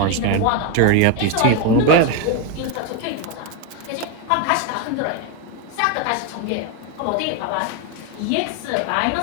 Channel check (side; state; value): both; different; correlation 0.02